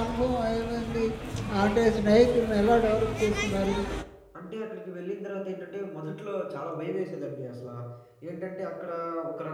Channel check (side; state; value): both; identical; correlation 1.00